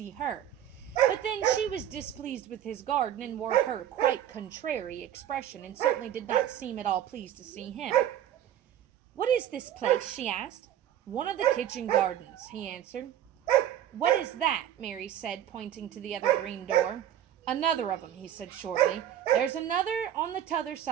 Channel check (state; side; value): quieter; left; 11.0 dB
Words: her. But then she was displeased with his garden, and wore her quite contrary expression, and certainly did not seem at all pleased to see him. "What is this place?" she asked. "One of the kitchen gardens," he answered. "What is that?" Mary said, pointing to the other green door. "Another of 'em," he said shortly. "There's another on the t'other